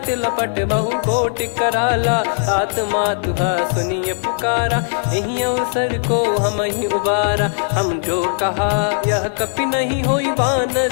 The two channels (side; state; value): right; silent; digital silence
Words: लपट बहु कोट कराला सात मातुहा सुनिय पुकारा यही अवसर को हम ही उबारा हम जो कहा यह कपि नहीं होई